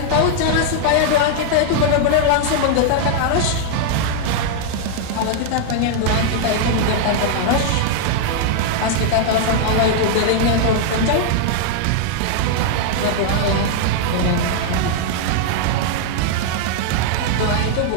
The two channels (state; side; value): different; both; correlation 0.00